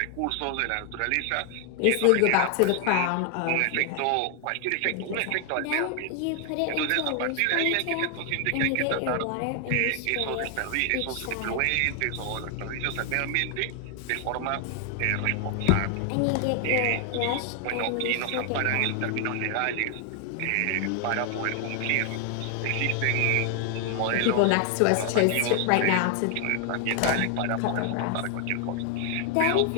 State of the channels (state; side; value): different; both; correlation 0.00